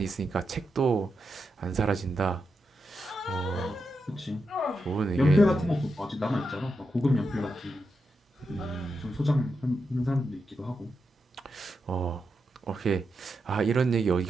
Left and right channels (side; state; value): both; normal; correlation 0.86